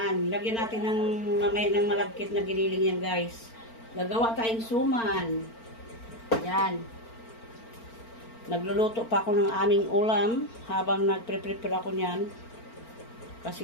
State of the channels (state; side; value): late; right; 4.4 ms